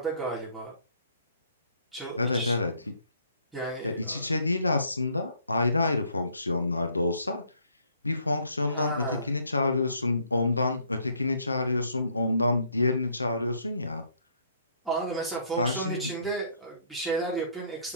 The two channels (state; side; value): inverted; both; correlation -0.65